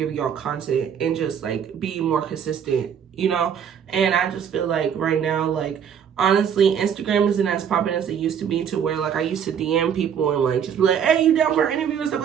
y'all content and just like be more consistent, and I just feel like right now, like honestly, Instagram isn't as popular as it used to be, to where like I used to DM people and like just be like, hey, you down for an interview and stuff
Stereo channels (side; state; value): left; quieter; 8.1 dB